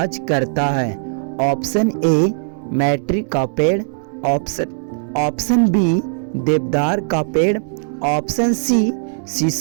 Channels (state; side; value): silent; left; digital silence